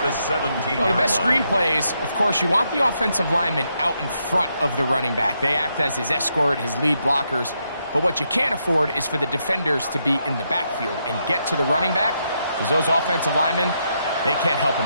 the 17-yard Well, the best line. screen plays, of course, you want the offensive linemen out in front of the running back. They act as his escort, his lead blockers. But what you can't afford is for the defenders to be in the backfield and get to the running back, because those offensive linemen, they can't help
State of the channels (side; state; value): both; inverted; correlation -0.80